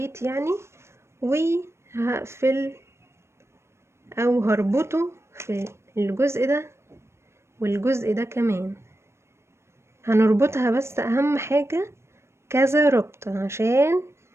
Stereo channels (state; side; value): late; left; 0.13 ms